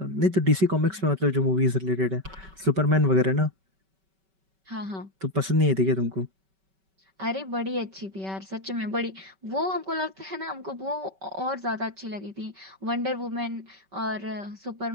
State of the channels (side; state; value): left; late; 5.2 ms